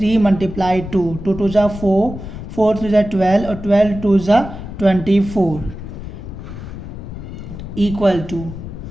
मल्टीप्लाई 2, 2 2 जा 4, 4 3 जा 12 और 12 2 जा 24 इक्वल टू,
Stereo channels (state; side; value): noise; left; rumble, 10 dB below the sound